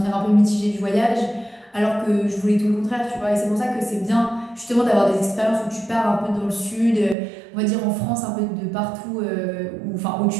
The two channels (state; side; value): drops out; left; at 7.2 s